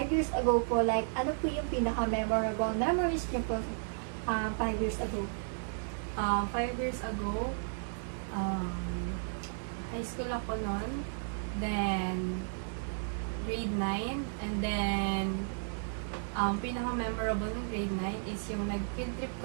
years ago po, like ano po yung pinaka-memorable memories niyo po 5 years ago? 5 years ago, high school ako noon, then grade 9, and then pinaka-memorable ng grade 9 is yung nag-field trip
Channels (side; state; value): left; silent; 55 dB below the other